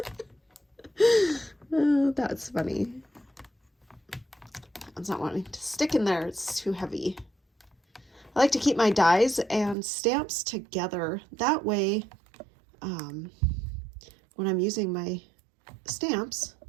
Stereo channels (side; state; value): left; drops out; at 9.8 s